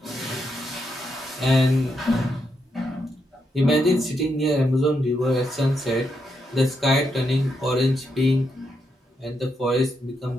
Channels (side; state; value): both; normal; correlation 0.81